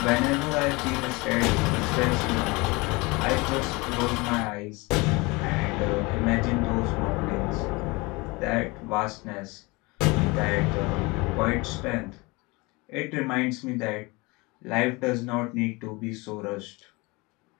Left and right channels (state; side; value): quieter; right; 25.2 dB